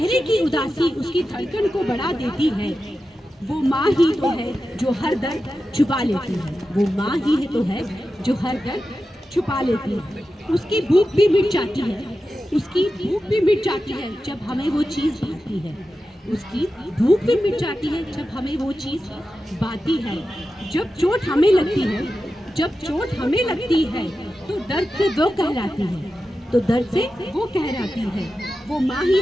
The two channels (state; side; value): normal; both; correlation 0.92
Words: की उदासी उसकी धड़कन को बढ़ा देती है। वो माँ ही तो है जो हर दर्द छुपा लेती है। वो माँ ही है तो है जो हर दर्द छुपा लेती है। उसकी भूख भी मिट जाती है जब हमें वो चीज़ भाती है। उसकी भूख भी मिट जाती है जब हमें वो चीज़ भाती है। जब चोट हमें लगती है तो दर्द से वो कहलाती है। वो माँ ही